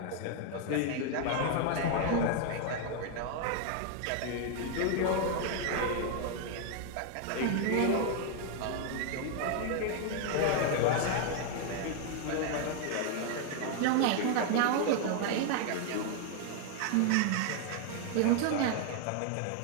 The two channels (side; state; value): both; different; correlation 0.00